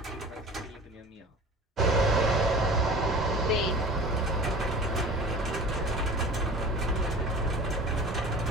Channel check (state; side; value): normal; both; correlation 0.41